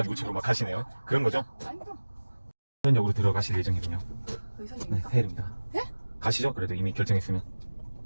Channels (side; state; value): both; inverted; correlation -1.00